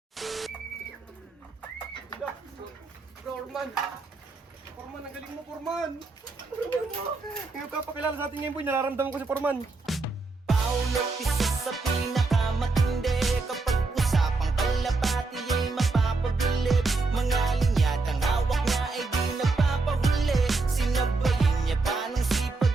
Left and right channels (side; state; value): left; quieter; 3.7 dB